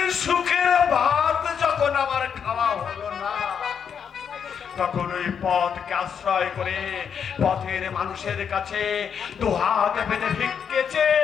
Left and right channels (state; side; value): quieter; right; 7.3 dB